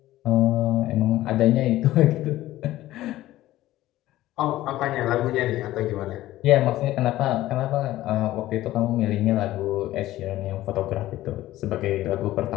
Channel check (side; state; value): right; quieter; 15.4 dB